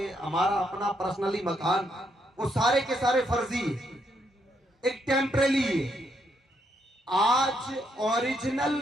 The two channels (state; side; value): normal; both; correlation 0.76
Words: हमारा अपना पर्सनली मकान, वो सारे के सारे फर्जी एक टेम्परेरी है। आज ओरिजिनल